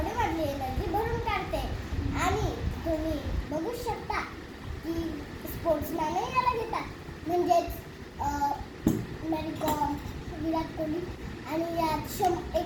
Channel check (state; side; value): identical; both; correlation 1.00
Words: एनर्जी भरून काढते आणि तुम्ही बघू शकता की स्पोर्ट्समॅनही याला घेतात, म्हणजेच मेरी कॉम, विराट कोहली. आणि यात